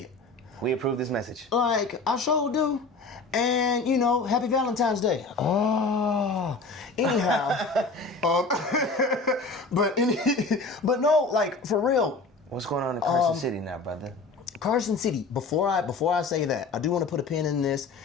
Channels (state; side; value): quieter; right; 3.8 dB